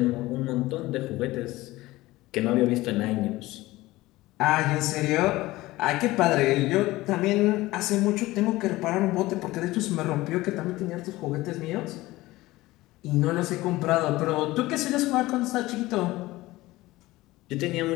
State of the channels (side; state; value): right; quieter; 18.6 dB